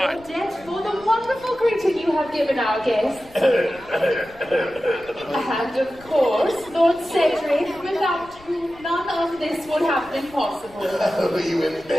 your debt for the wonderful greeting you have given our guests. And of course, Lord Cedric, without whom none of this would have been possible. Oh, you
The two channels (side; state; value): left; noise; rumble, 24 dB below the sound